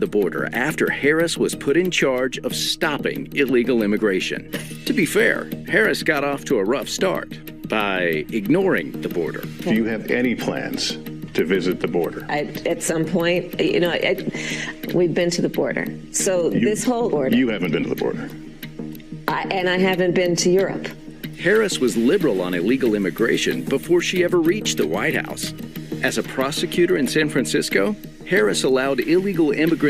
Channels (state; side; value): identical; both; correlation 1.00